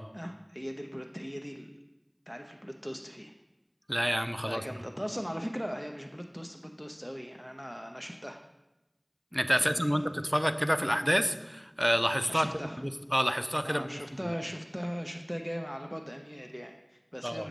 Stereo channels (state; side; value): identical; both; correlation 1.00